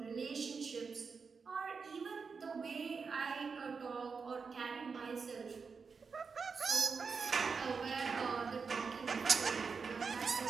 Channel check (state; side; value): quieter; left; 5.2 dB